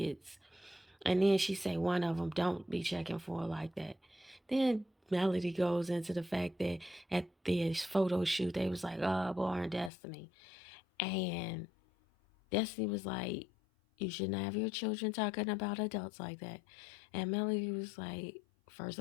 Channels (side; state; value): right; drops out; at 9.9 s